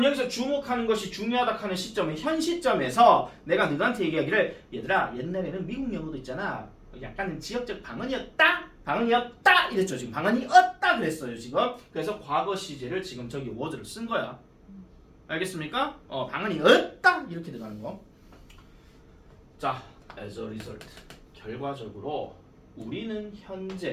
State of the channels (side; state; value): both; identical; correlation 1.00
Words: 여기서 주목하는 것이 중요하다 하는 시점은 현 시점에서 내가 너한테 얘기하기를 얘들아 옛날에는 미국 영어도 있잖아. 약간 지역적 방언이었다 이랬죠. 지금 방언이었다 그랬어요. 지금. 그래서 과거 시제를 지금 저기 word를 쓴 거야. 알겠습니까? 방언이었다 이렇게 들어가는 거. 자, as a result 결과적으로 우리는